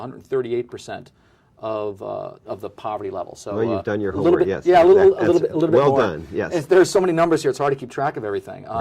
of the poverty level. So well, you've done your homework, bit, yes. Yeah, a little bit well more. Well done, yes. There's so many numbers here, it's hard to keep track of everything,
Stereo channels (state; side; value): identical; both; correlation 1.00